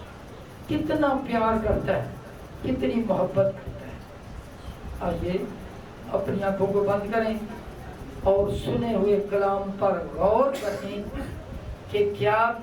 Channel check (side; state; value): both; identical; correlation 1.00